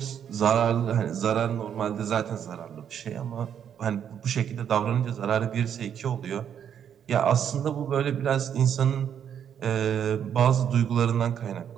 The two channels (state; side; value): quieter; left; 8.8 dB